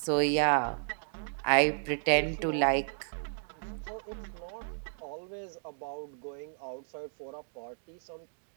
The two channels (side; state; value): left; silent; digital silence